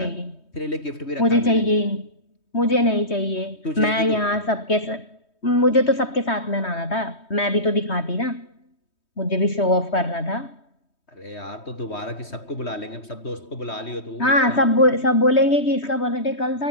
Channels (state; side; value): late; right; 3.2 ms